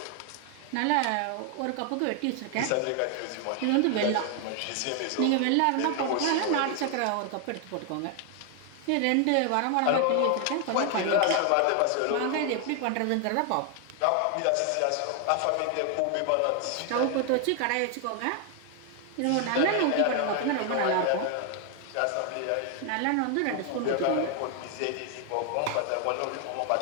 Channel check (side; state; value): both; different; correlation 0.00